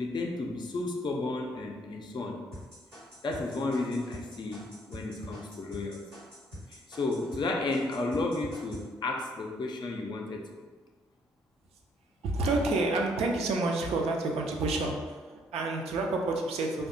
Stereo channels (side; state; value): both; normal; correlation 0.65